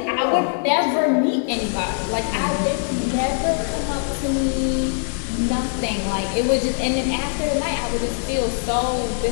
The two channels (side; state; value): right; silent; 64 dB below the other